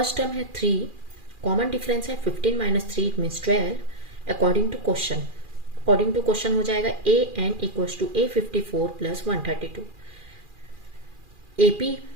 term है 3, कॉमन डिफरेंस है 15 minus 3 it means 12। According to question हो जाएगा AN equals to A54 plus 132। AP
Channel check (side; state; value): left; late; 2.4 ms